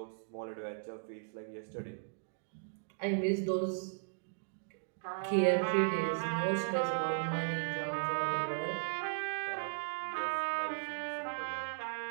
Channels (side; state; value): left; silent; digital silence